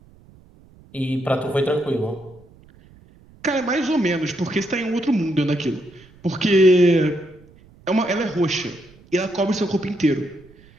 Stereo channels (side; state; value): right; noise; rumble, 26 dB below the sound